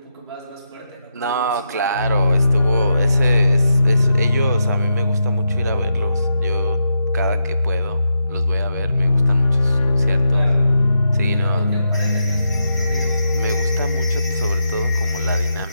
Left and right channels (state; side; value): inverted; both; correlation -0.84